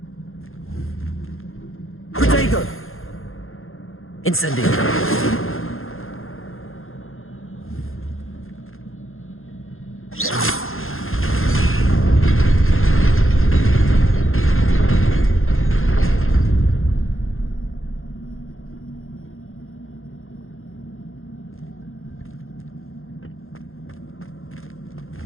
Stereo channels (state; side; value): late; right; 0.61 ms